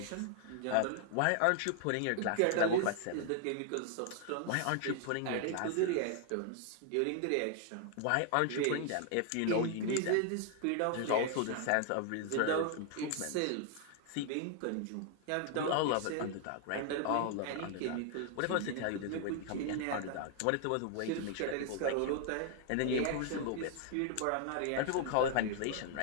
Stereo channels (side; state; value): both; different; correlation 0.00